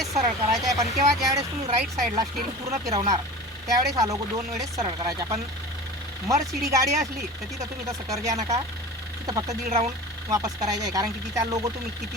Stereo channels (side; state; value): both; normal; correlation 0.36